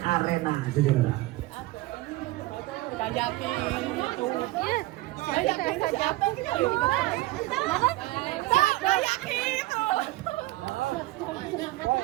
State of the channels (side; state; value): left; quieter; 18.7 dB